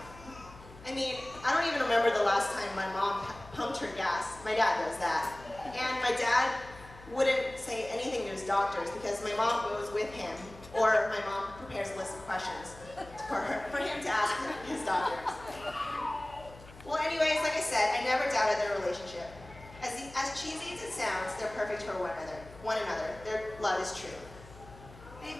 I mean, I don't even remember the last time my mom pumped her gas. My dad does that. And my dad wouldn't say anything to his doctors because my mom goes with him, or my mom prepares a list of questions for him to ask his doctors. Well, anyways, like I said, I never doubted their relationship. As cheesy as it sounds, they're perfect for one another. Their love is true.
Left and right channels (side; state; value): left; noise; hum, 19 dB below the sound